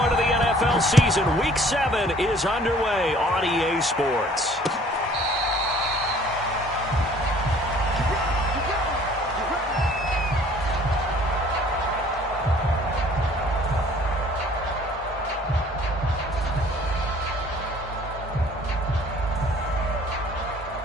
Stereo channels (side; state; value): both; normal; correlation 0.54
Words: of the NFL season, Week 7 is underway on EA Sports.